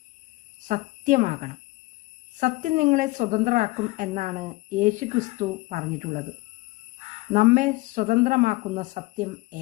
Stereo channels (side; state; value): right; quieter; 21.4 dB